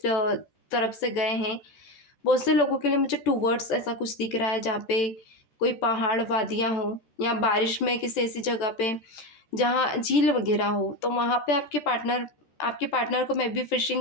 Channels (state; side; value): late; right; 13 ms